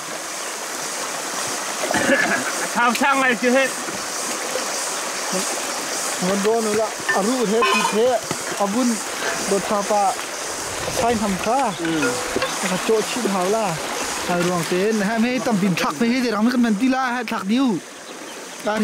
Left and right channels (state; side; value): identical; both; correlation 1.00